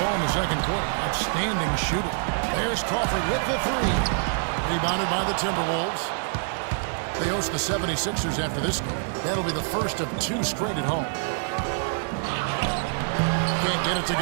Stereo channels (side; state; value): left; silent; digital silence